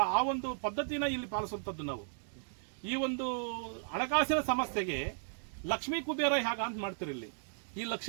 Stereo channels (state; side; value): silent; left; digital silence